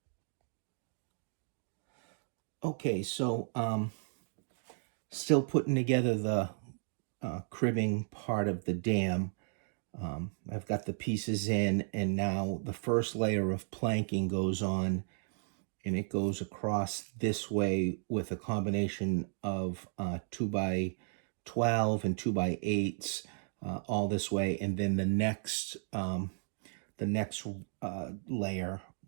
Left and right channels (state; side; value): silent; left; digital silence